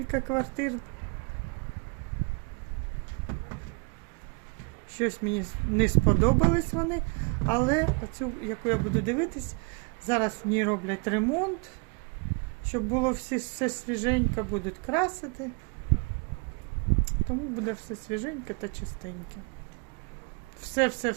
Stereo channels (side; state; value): left; quieter; 34.6 dB